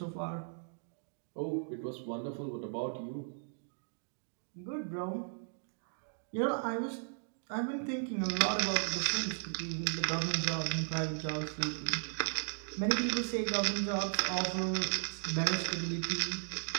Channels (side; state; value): left; silent; digital silence